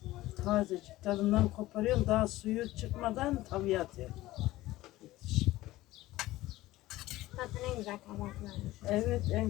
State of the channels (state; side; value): quieter; right; 17.1 dB